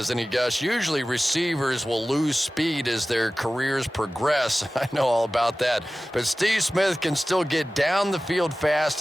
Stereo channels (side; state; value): both; normal; correlation 0.96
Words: he, Gus? Usually receivers will lose speed as their careers progress. I know all about that. But Steve Smith can still get down the field fast